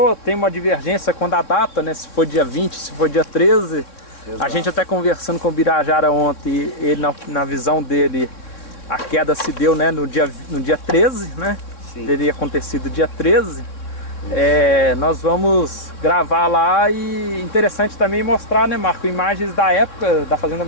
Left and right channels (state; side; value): late; right; 3.6 ms